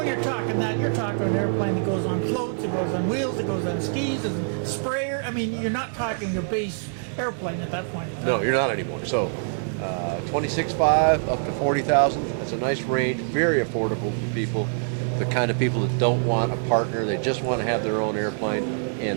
you're talking that, you're talking an airplane that goes on floats, it goes on wheels, it goes on skis, and sprayer. I mean, you're not talking a base airplane at that point. No, you're not anymore. So, $26,500 up to $40,000. That's a nice range, very affordable for people. The kind of people that don't want a partner, they just want to have their own airplane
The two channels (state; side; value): silent; left; 62 dB below the other